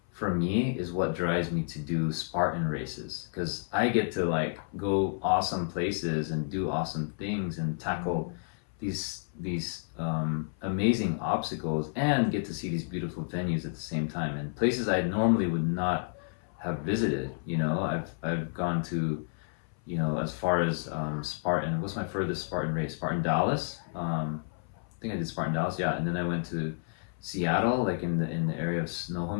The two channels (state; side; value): silent; right; 57 dB below the other